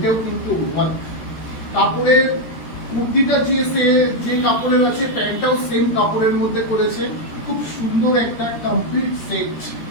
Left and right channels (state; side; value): late; right; 13 ms